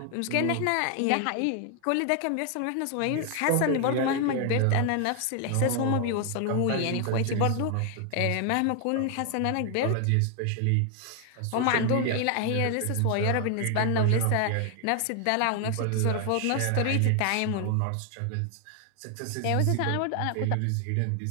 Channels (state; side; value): different; both; correlation 0.00